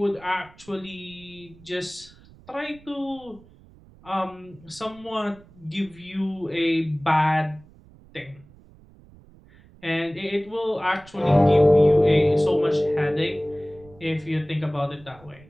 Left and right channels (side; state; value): right; noise; rumble, 25 dB below the sound